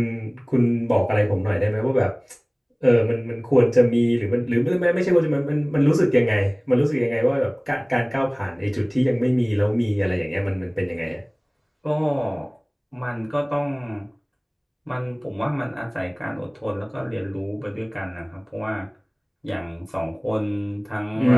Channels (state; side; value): identical; both; correlation 1.00